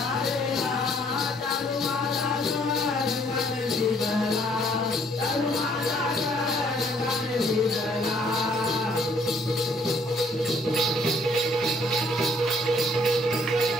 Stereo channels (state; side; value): normal; both; correlation 0.64